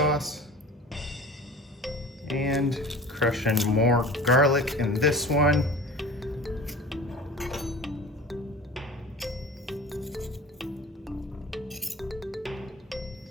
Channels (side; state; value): both; normal; correlation 0.39